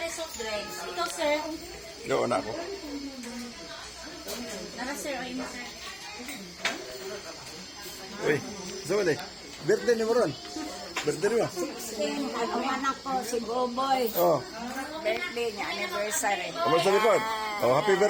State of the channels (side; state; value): both; identical; correlation 1.00